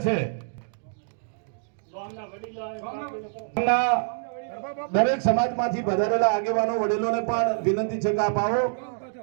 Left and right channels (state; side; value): silent; left; digital silence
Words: છે, દરેક સમાજમાંથી પધારેલા આગેવાનો વડીલોને પણ વિનંતી છે કે આપ આવો